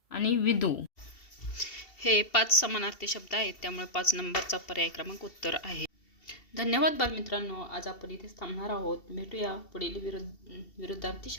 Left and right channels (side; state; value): right; late; 2.7 ms